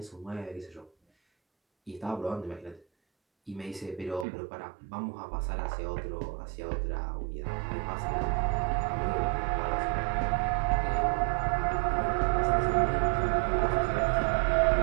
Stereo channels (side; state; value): left; drops out; at 4.2 s